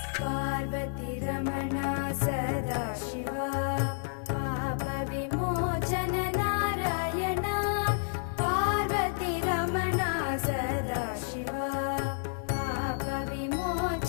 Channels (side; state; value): right; silent; 58 dB below the other